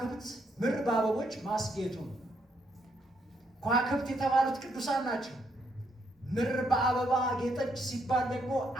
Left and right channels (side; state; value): both; normal; correlation 0.75